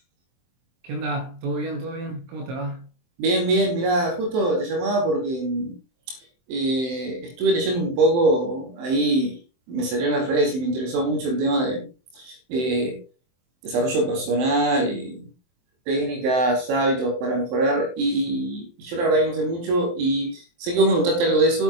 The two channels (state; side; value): late; left; 23 ms